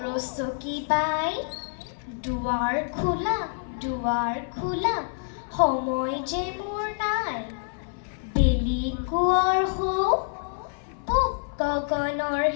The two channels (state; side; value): silent; right; 60 dB below the other